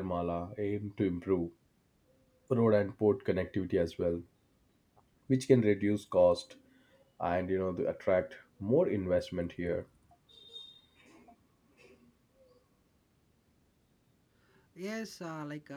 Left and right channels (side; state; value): both; identical; correlation 1.00